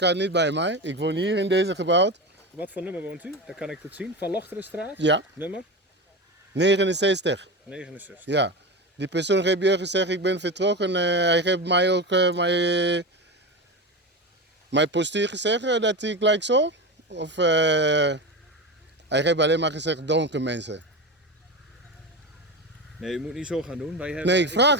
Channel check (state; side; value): normal; both; correlation 0.23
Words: niet bij mij. Ik woon hier in deze gebouw. Wat voor nummer woont u? Dan kan ik het zien. Van Lochterenstraat? Ja, Nummer? 69. 69. Ja. Die persoon heeft je gezegd, ik ben vertrokken. Hij heeft mij ook mijn postuur gezegd dat ik gelijk zo. Of hij heeft alleen maar gezegd donker mensen. Nee, u moet niet zo gaan doen. Wij hebben, Nee, ik vraag.